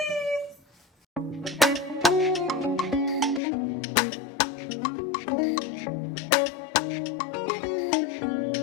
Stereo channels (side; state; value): right; drops out; at 3.4 s